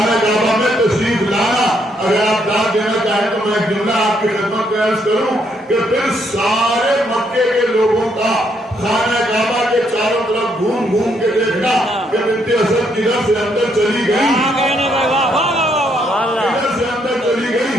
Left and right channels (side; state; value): both; normal; correlation 0.73